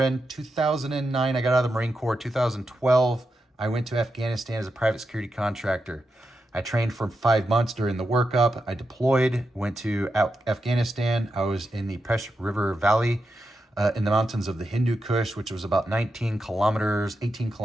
2009, I got out of the Marine Corps. 2012, I went to Afghanistan as a private security contractor. I trained for 5 months during the workup. I deployed, went to Afghanistan. I was in the Pesh River Valley in the mountains of the Hindu Kush, which was about 18 kilometers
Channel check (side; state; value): both; normal; correlation 0.87